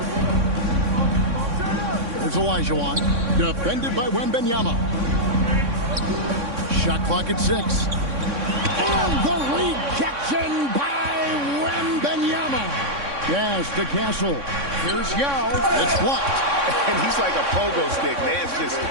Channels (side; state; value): left; late; 3.6 ms